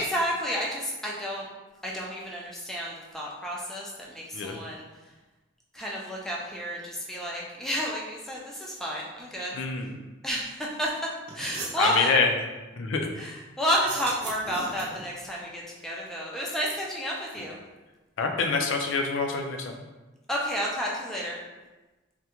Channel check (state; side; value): normal; both; correlation 0.18